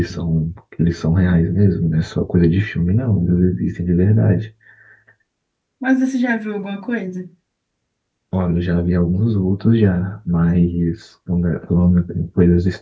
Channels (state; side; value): identical; both; correlation 1.00